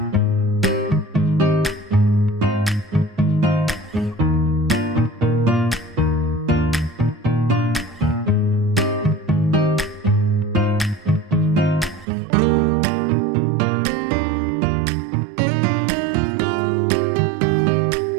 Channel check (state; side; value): drops out; left; at 12.1 s